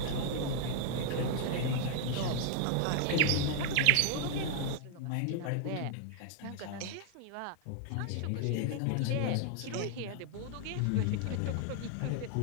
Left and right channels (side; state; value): both; different; correlation 0.00